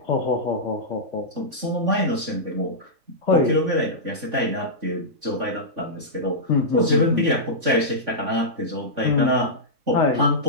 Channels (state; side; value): late; left; 3.5 ms